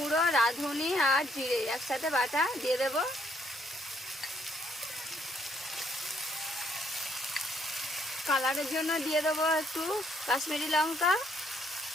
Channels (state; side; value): normal; both; correlation 0.69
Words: রাঁধুনি আর জিরে একসাথে বাটা দিয়ে দেব। কালারের জন্য দিয়ে দেবো একটু কাশ্মীরি লঙ্কা,